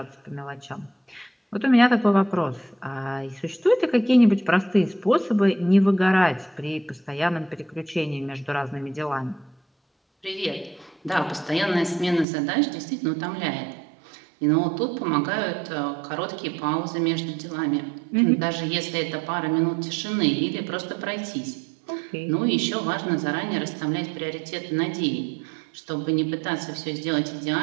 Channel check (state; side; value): drops out; left; at 12.2 s